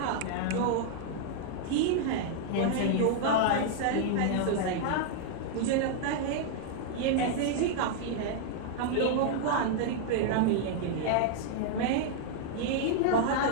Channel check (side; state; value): both; different; correlation -0.01